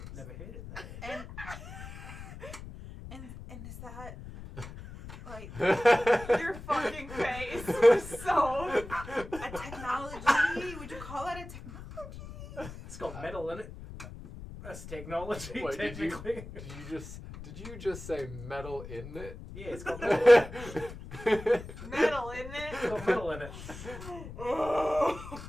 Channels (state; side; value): noise; left; rumble, 12 dB below the sound